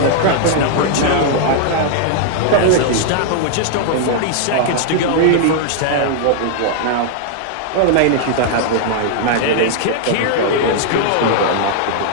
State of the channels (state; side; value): different; both; correlation -0.01